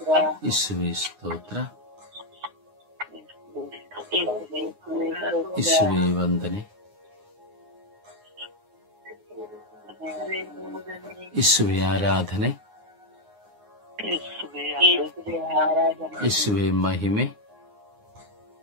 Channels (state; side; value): late; left; 9.6 ms